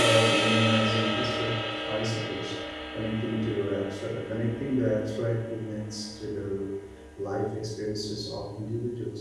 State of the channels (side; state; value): both; identical; correlation 1.00